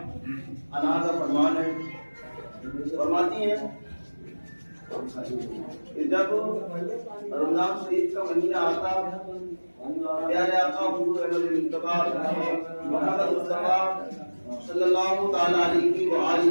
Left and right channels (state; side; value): inverted; both; correlation -1.00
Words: عنہا کا فرمان ہے، فرماتی ہیں کہ جب رمضان شریف کا مہینہ آتا، پیارے آقا حضور احمد مصطفیٰ محمد مصطفیٰ صلی اللہ تعالیٰ علیہ